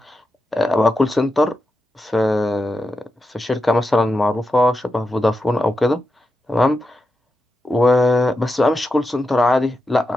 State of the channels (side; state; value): both; normal; correlation 0.88